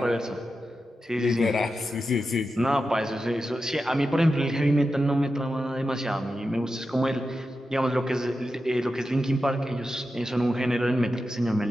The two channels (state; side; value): normal; both; correlation 0.90